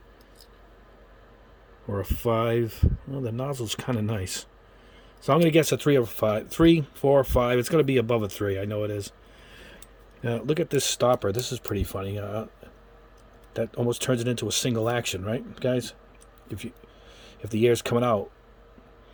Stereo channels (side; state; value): both; identical; correlation 1.00